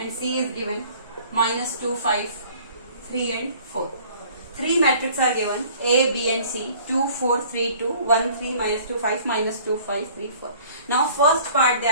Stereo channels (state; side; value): inverted; both; correlation -0.52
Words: C is given minus 2, 5, 3 and 4. 3 matrices are given, A, B and C, 2, 4, 3, 2, 1, 3, minus 2, 5, minus 2, 5, 3, 4. Now first part they